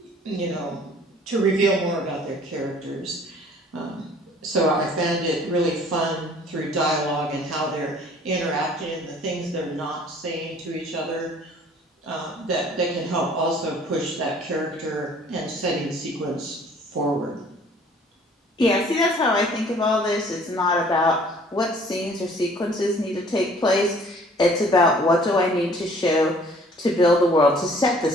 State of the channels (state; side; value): normal; both; correlation 0.54